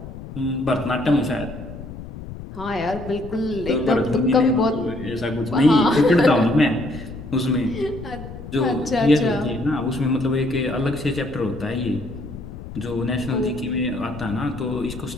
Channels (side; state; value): left; noise; rumble, 12 dB below the sound